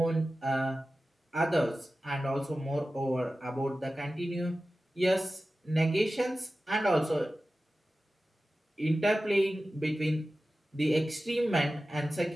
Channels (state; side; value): normal; both; correlation 0.95